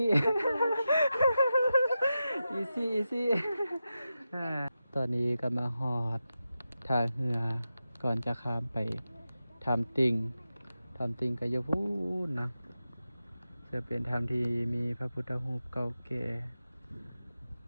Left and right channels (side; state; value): both; inverted; correlation -0.91